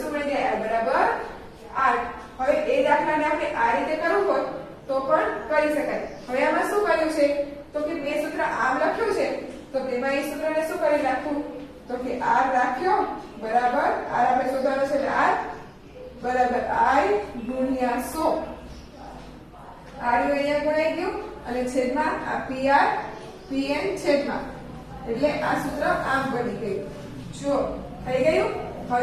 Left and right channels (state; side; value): identical; both; correlation 1.00